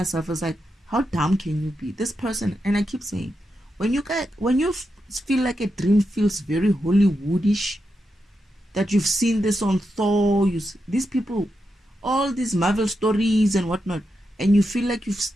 it's like, how dumb can you be? This person, and I keep saying, when you feel like a dream feels very Hollywoodish, that you've seen this on Thor, these people, all these Marvel stories and whatnot, and you feel like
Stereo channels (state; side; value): normal; both; correlation 0.86